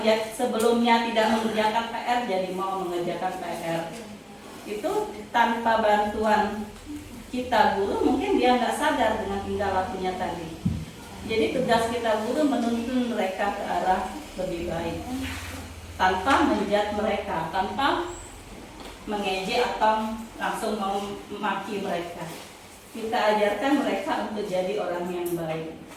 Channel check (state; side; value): identical; both; correlation 1.00